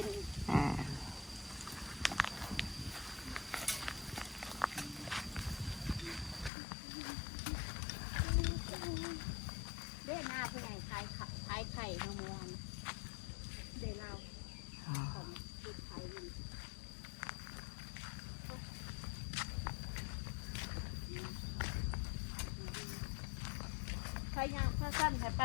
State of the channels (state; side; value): drops out; right; at 6.5 s